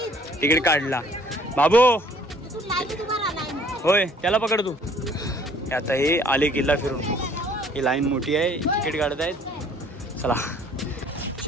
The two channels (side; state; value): both; normal; correlation 0.57